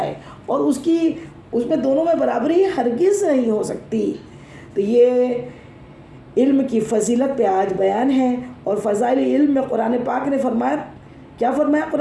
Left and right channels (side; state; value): both; identical; correlation 1.00